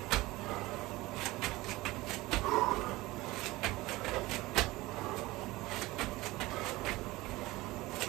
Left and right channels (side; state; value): left; quieter; 19.8 dB